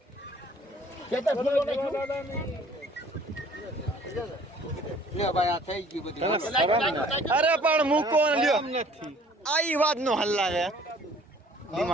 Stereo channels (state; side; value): normal; both; correlation 0.55